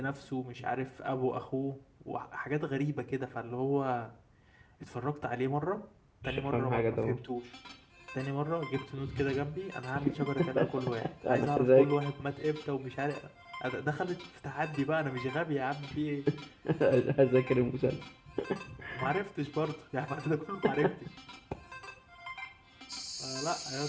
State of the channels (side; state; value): both; identical; correlation 1.00